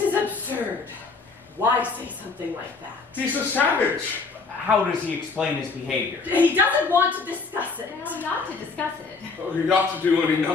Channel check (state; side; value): quieter; right; 4.3 dB